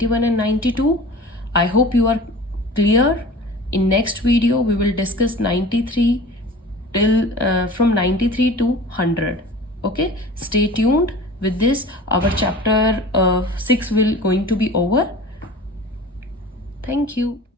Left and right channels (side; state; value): both; normal; correlation 0.40